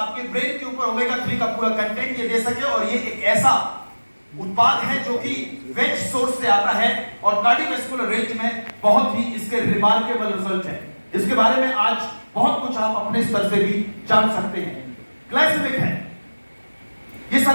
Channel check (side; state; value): both; inverted; correlation -1.00